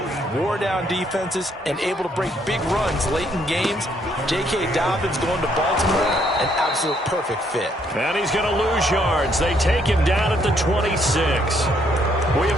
Wore down defenses and able to break big runs late in games. J.K. Dobbins going to Baltimore, an absolute perfect fit. And he's going to lose yards. They take him down at the 26. We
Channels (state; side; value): normal; both; correlation 0.70